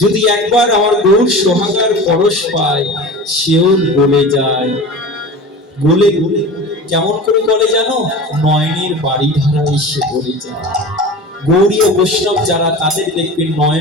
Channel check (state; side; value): normal; both; correlation 0.34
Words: যদি একবার আমার গৌর সোহাগার পরশ পায়, সেও গলে যায়। গলে গলে কেমন করে গলে জানো? নয়নের বাড়ি ধারায় সে গলে যায়। গৌরীয় বৈষ্ণব যারা, তাদের দেখবেন